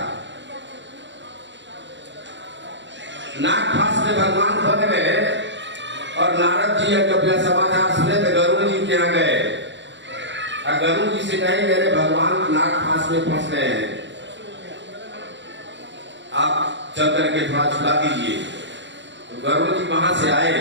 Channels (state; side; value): late; left; 0.53 ms